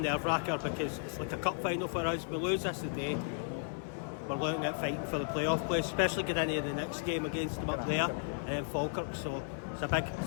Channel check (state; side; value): silent; right; 55 dB below the other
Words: because it's like a cup final for us. We lose this today, we're looking at fighting for the playoff place, especially getting into the next game against them up there and then Falkirk. So it's a